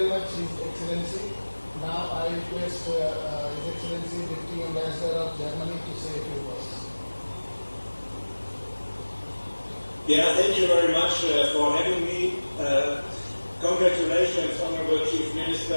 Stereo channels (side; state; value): both; inverted; correlation -1.00